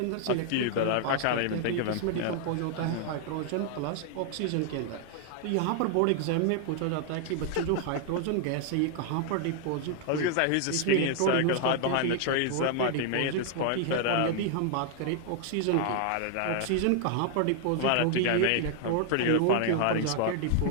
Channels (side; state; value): both; different; correlation 0.00